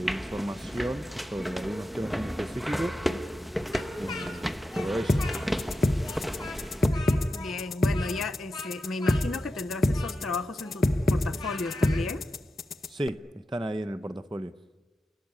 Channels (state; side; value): normal; both; correlation 0.90